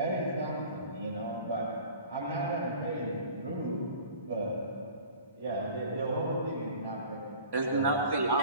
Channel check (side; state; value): both; inverted; correlation -0.44